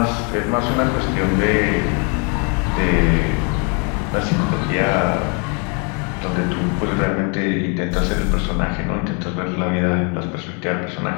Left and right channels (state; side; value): quieter; right; 35.8 dB